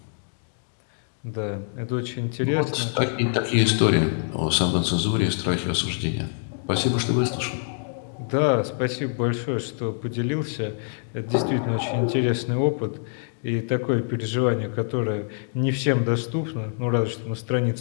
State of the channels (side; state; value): right; silent; digital silence